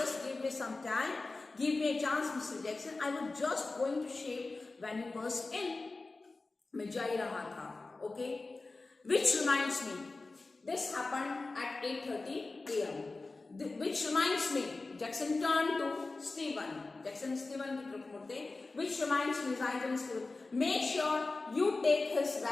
give me some time, give me a chance, Mr. Jackson. I was just going to shave when you burst in. मैं जा ही रहा था, okay. Which reminds me, this happened at 8:30 a.m. Which reminds me, Jackson turned to Stephen. Jackson Stephen की तरफ मुड़ते. Which reminds me, Stephen, make sure you take his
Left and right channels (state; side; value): quieter; right; 3.5 dB